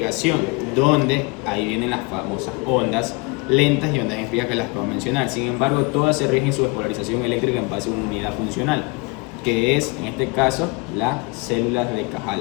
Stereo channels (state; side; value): quieter; right; 28.0 dB